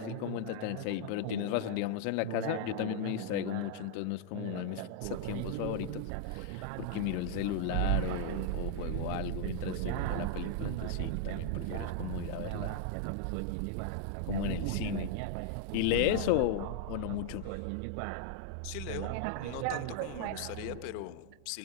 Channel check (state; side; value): different; both; correlation -0.01